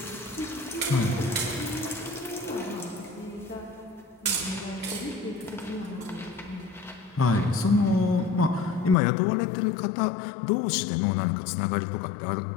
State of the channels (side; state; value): right; drops out; at 9.0 s